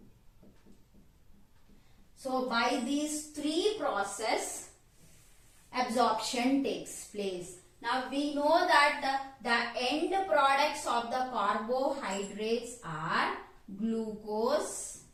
So by these 3 processes absorption takes place. Now we know that the end products of the carbohydrates are glucose,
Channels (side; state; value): both; identical; correlation 1.00